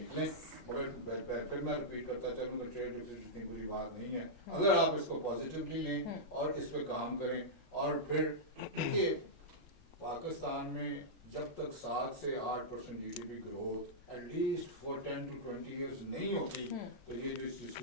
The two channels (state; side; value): normal; both; correlation -0.11